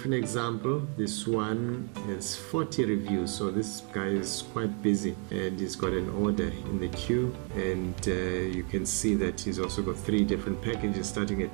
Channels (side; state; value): left; quieter; 35.2 dB